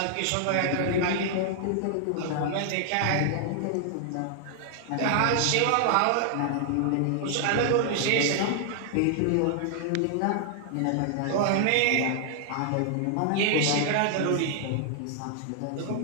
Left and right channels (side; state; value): both; different; correlation 0.00